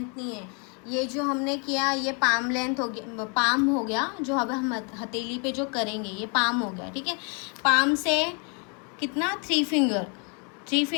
नहीं है। ये जो हमने किया ये पाम लेंथ हो गया, पाम हो गया। जो अब हम हथेली पे जो करेंगे ये पाम हो गया। ठीक है, पाम से कितना 3 फिंगर, 3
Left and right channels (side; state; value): right; quieter; 36.1 dB